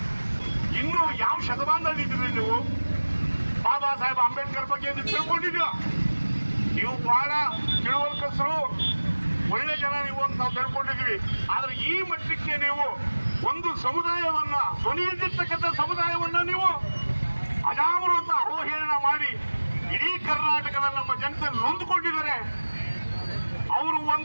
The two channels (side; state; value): both; inverted; correlation -1.00